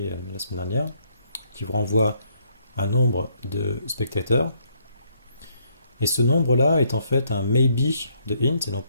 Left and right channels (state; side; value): inverted; both; correlation -0.71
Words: la semaine dernière, qui vous renvoie un nombre de spectateurs. Et ce nombre-là est en fait un maybe de int, et non